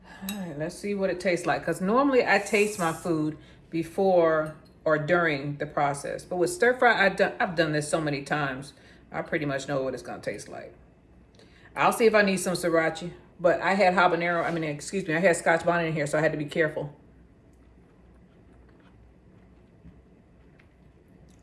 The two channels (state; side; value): identical; both; correlation 1.00